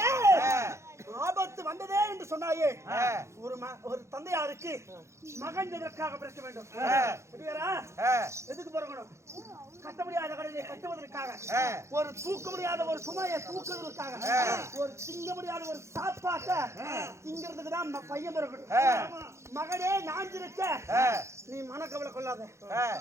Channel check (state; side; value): late; left; 0.14 ms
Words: ஆபத்து வந்ததே என்று சொன்னாயே ஒரு தந்தையாருக்கு மகன் எதற்காக பிறக்க வேண்டும் எதுக்கு பிறக்கணும் கட்ட முடியாத கடனை கட்டுவதற்காக ஒரு தூக்க முடியாத ஒரு சுமையை தூக்குவதற்காக ஒரு திங்க முடியாத ஒரு சாப்பாட்டை திங்கிறதுக்கு தான் பையன் பிறக்கணும் மகனே நாஞ்சிருக்க நீ மனக்கவலை கொள்ளாத